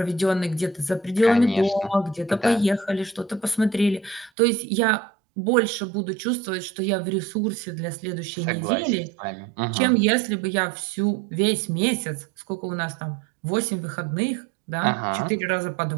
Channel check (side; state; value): left; drops out; at 4.3 s